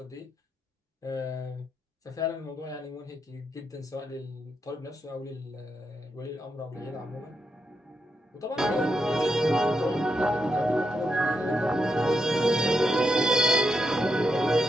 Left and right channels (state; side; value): normal; both; correlation 0.83